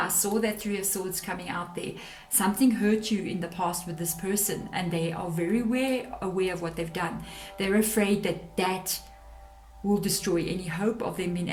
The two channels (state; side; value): identical; both; correlation 1.00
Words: saw that 3 of Swords coming out there. Something hurt you in the past with this person, and they are very aware of what they've done. They're afraid that will destroy any hope of them being